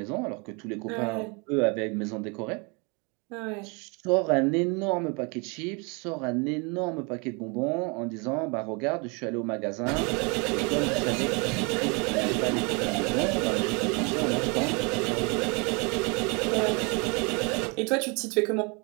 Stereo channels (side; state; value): left; quieter; 31.4 dB